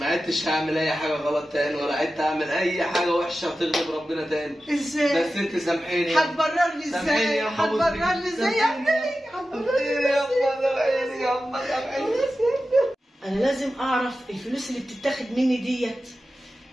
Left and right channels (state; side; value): normal; both; correlation 0.93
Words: عدتش هعمل اي حاجه غلط تاني، ولا عدت اعمل اي حاجه وحشه تغضب ربنا تاني. ازاي؟ بس انت سامحيني. هتبرر لي ازاي؟ هتبرر لي ازاي يا ابني؟ انا لازم اعرف الفلوس اللي بتتاخد مني ديت